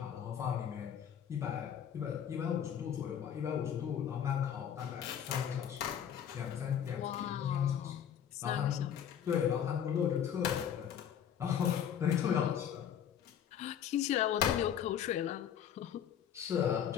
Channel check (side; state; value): right; quieter; 9.1 dB